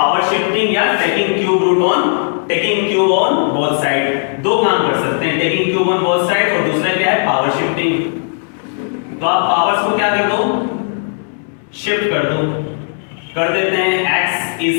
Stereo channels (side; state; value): right; silent; digital silence